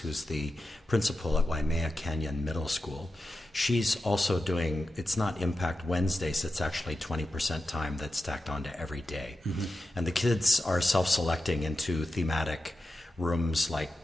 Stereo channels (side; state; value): both; normal; correlation 0.91